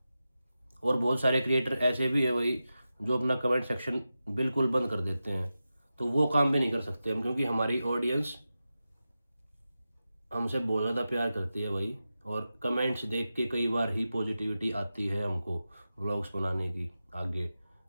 और बहुत सारे क्रिएटर ऐसे भी है भाई जो अपना कमेंट सेक्शन बिल्कुल बंद कर देते हैं, तो वो काम भी नहीं कर सकते हम, क्योंकि हमारी ऑडियंस हमसे बहुत ज़्यादा प्यार करती है भाई, और कमेंट्स देख के कई बार ही पॉजिटिविटी आती है हमको व्लॉग्स बनाने की आगे,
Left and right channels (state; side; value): inverted; both; correlation -0.92